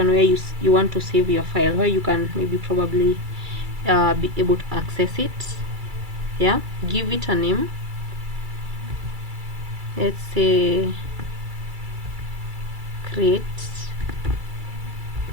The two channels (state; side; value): late; left; 2.3 ms